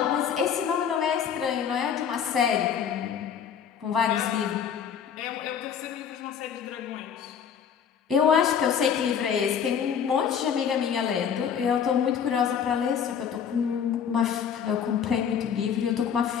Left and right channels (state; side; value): quieter; right; 7.9 dB